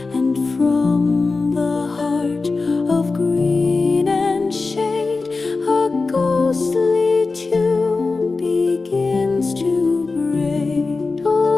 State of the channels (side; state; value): right; quieter; 3.9 dB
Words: and from the heart of green and shade a ghostly tune begins to braid.